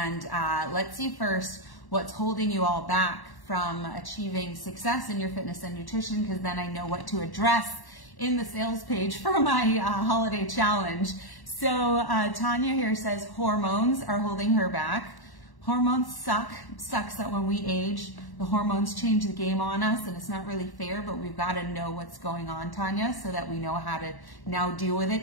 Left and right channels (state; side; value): late; right; 1.1 ms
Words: let's see first what's holding you all back from achieving success in your fitness and nutrition, because then I know what to address in the sales page for my holiday challenge. So Tanya here says hormones are holding her back. Hormones suck. Sucks that when we age, the hormones change the game on us, and it's not really fair, but we've got to know what's going on, Tanya, so that we know how to now deal with